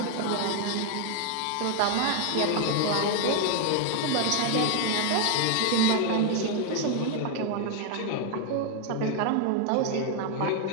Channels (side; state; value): both; different; correlation 0.01